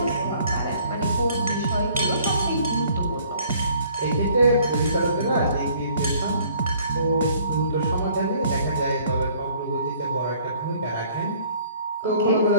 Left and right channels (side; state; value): both; inverted; correlation -0.57